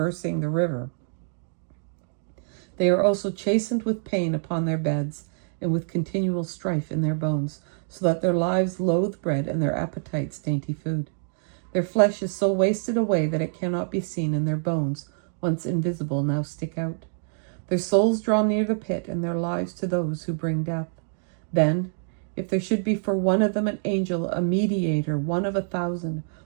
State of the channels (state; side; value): silent; left; digital silence